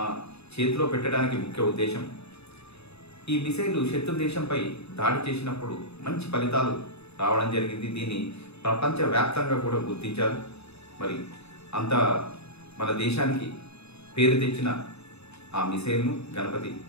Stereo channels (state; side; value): late; right; 0.79 ms